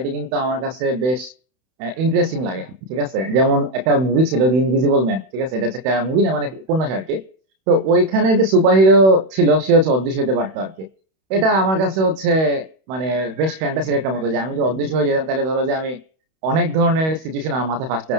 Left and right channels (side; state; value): left; late; 31 ms